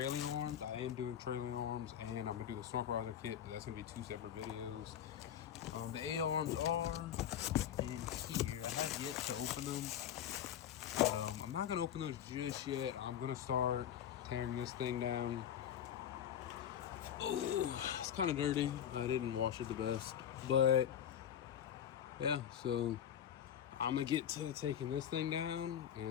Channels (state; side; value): quieter; right; 9.8 dB